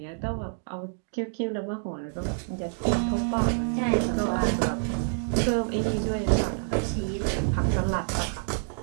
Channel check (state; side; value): silent; left; digital silence